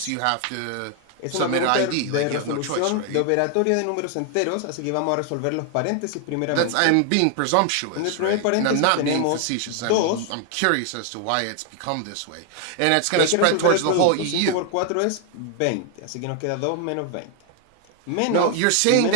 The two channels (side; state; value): both; different; correlation 0.00